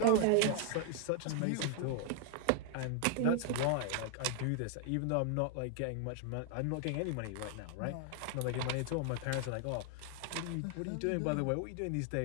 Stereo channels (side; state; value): both; different; correlation 0.00